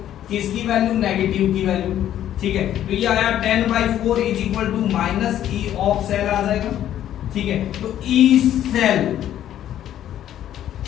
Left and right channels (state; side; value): quieter; right; 11.5 dB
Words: किसकी वैल्यू नेगेटिव की वैल्यू, ठीक है। तो ये आया 10/4 is equal to minus E of cell आ जाएगा, ठीक है। तो ई सेल